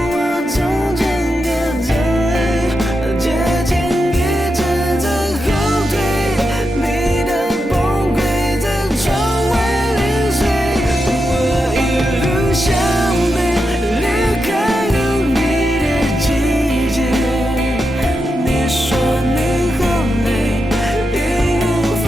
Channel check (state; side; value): normal; both; correlation 0.87